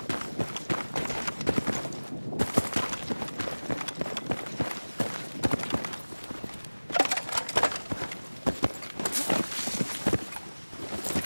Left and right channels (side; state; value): both; inverted; correlation -1.00